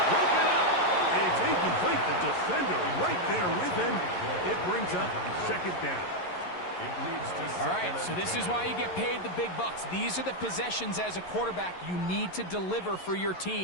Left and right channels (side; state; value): right; late; 11 ms